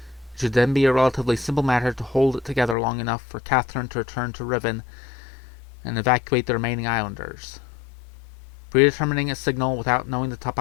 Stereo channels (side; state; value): right; drops out; at 2.8 s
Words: it should then be a relatively simple matter to hold it together long enough for Catherine to return to Riven and evacuate the remaining islanders. Predetermining a signal without knowing the